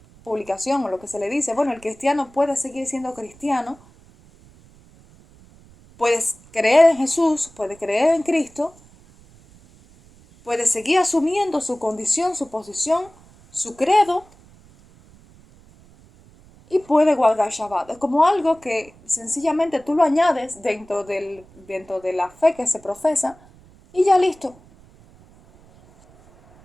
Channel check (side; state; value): right; noise; rumble, 26 dB below the sound